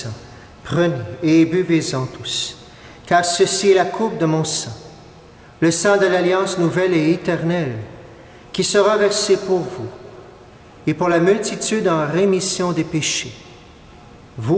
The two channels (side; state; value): both; identical; correlation 1.00